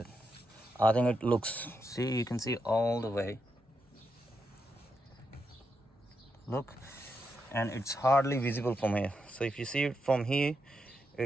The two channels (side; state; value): both; normal; correlation 0.83